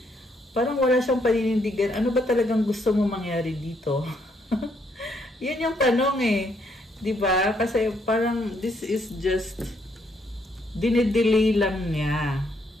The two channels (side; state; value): both; normal; correlation 0.73